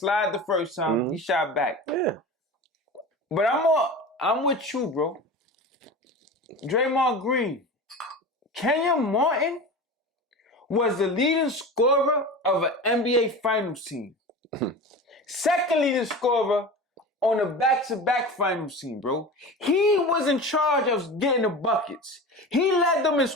the first time. He shot back. Yeah. But I'm with you, bro. Draymond Green. Kenyon Martin was the leading scorer of an NBA Finals team. Second leading scorer on a back-to-back finals team, bro. He was in charge of getting the buckets. He led them in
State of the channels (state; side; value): normal; both; correlation 0.31